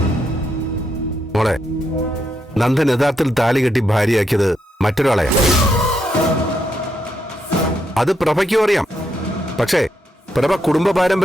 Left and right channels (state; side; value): normal; both; correlation 0.80